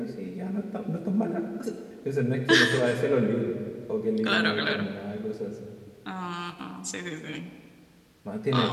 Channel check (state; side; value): identical; both; correlation 1.00